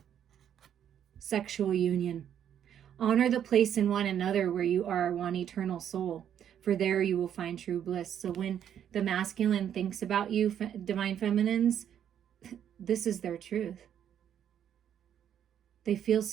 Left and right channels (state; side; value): quieter; left; 9.5 dB